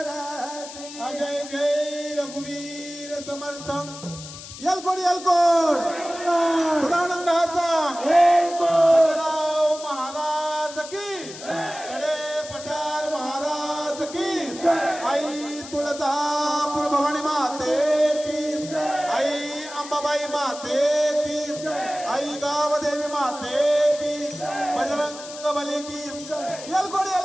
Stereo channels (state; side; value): noise; left; hiss, 13 dB below the sound